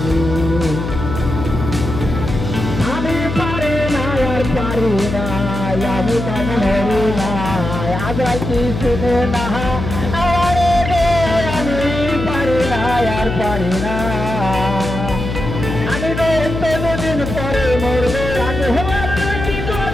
রে। আমি পারি না আর পারি না, আমি কেন হরি না আজ কি শুনে না, আমি পারি না আর পারি না, আমি দিন পরে মরবো, আগে হবার কি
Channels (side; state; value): left; noise; hum, 5 dB below the sound